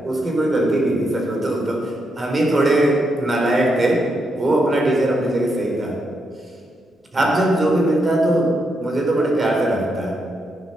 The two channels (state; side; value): normal; both; correlation 0.81